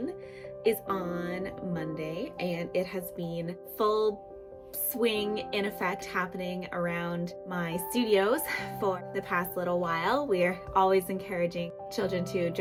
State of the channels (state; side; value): identical; both; correlation 1.00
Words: is on Monday, and it has been full swing in effect happening around my studios for the past little while. We're always encouraging children to